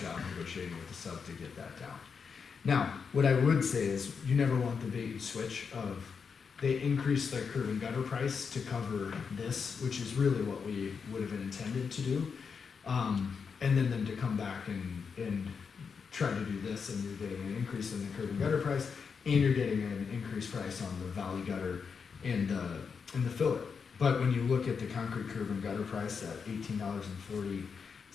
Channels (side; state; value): right; quieter; 5.9 dB